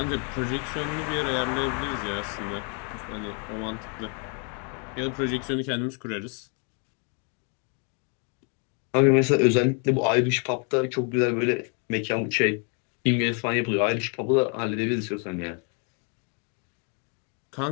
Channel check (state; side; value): quieter; right; 38.7 dB